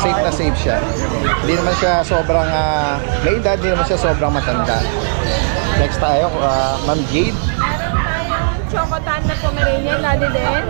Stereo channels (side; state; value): left; silent; 69 dB below the other